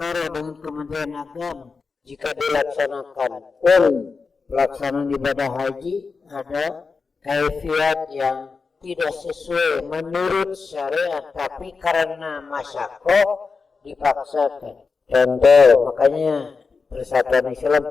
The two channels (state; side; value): quieter; right; 4.7 dB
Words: dengan Kementerian Agama. Jika dilaksanakan pun pelaksanaan ibadah haji ada kaifiat yang tidak sesuai menurut syariat, tapi karena masyakoh dipaksakan. Contoh, makanya Persatuan Islam